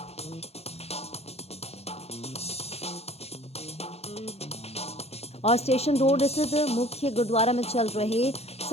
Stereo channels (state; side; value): late; right; 0.30 ms